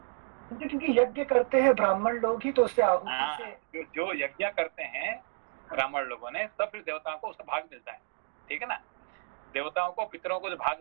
क्योंकि यज्ञ करते हैं ब्राह्मण लोग ही, तो उससे आहुति से जो यज्ञ करते हैं ब्राह्मण लोगों ने, तब फिर देवताओं को उसका भाग मिलता है। ठीक है ना? देवताओं को, पितरों को जो भाग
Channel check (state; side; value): silent; left; digital silence